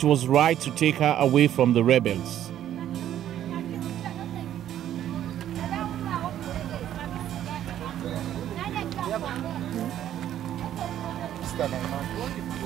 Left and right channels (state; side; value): quieter; left; 11.3 dB